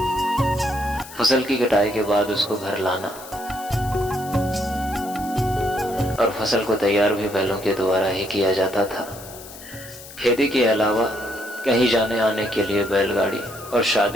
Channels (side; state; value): left; noise; hiss, 16 dB below the sound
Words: फसल की कटाई के बाद उसको घर लाना और फसल को तैयार भी बैलों के द्वारा ही किया जाता था। खेती के अलावा कहीं जाने आने के लिए बैलगाड़ी और